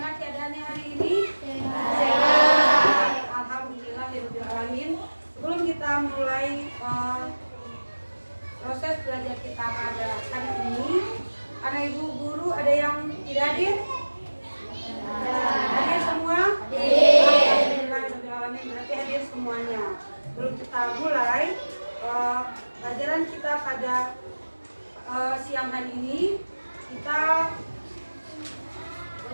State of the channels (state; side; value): inverted; both; correlation -1.00